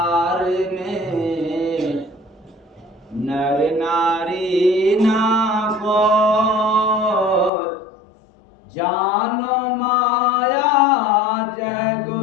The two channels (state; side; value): drops out; right; at 7.5 s